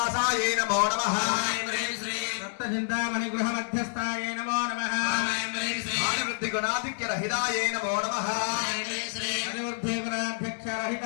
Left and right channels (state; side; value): silent; right; digital silence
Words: नमो नमः सप्तचिन्तामणि गृह मध्यस्थायै नमो नमः आदिवृद्धि गुणाधिक्य रहितायै नमो नमः आदिवृद्धि गुणाध्यक्ष